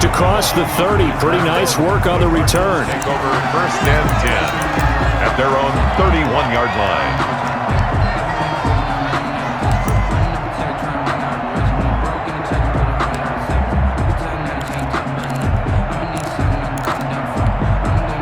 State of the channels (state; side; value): identical; both; correlation 1.00